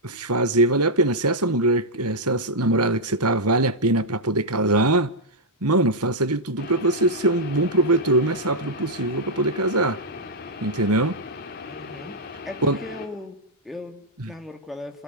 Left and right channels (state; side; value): normal; both; correlation -0.04